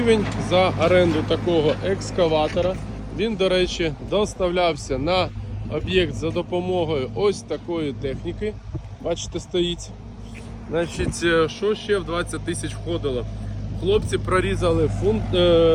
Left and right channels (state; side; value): identical; both; correlation 1.00